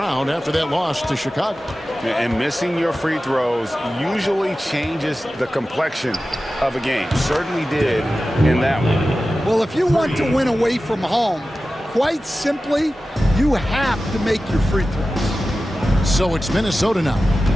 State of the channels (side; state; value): both; normal; correlation 0.94